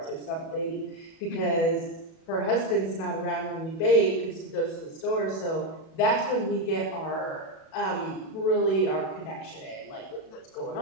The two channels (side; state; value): right; late; 37 ms